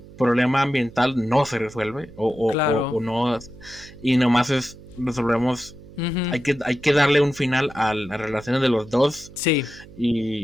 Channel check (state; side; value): noise; right; hum, 19 dB below the sound